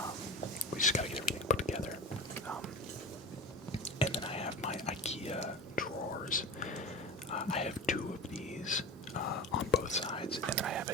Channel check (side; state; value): both; normal; correlation 0.31